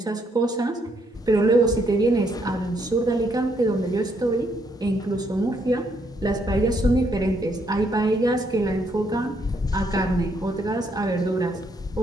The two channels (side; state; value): both; normal; correlation 0.73